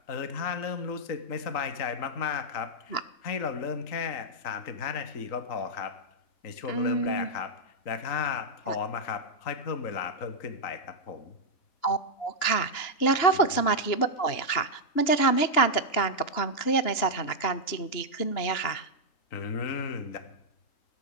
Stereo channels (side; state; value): right; late; 2.9 ms